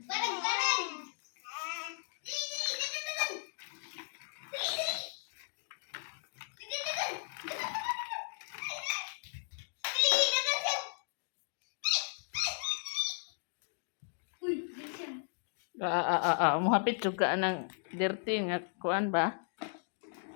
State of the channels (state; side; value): silent; right; digital silence